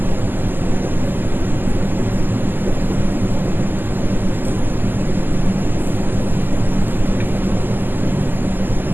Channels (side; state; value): left; late; 0.091 ms